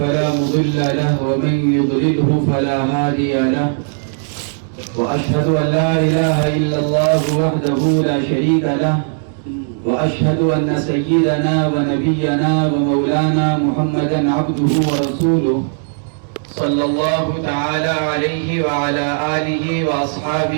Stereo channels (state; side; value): silent; left; digital silence